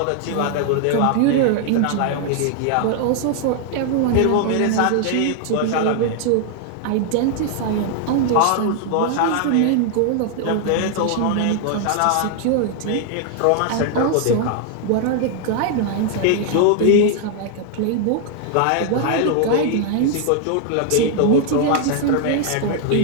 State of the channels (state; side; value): different; both; correlation 0.00